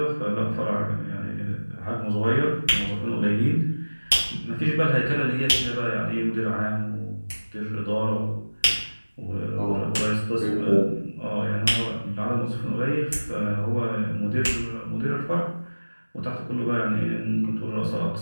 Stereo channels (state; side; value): inverted; both; correlation -1.00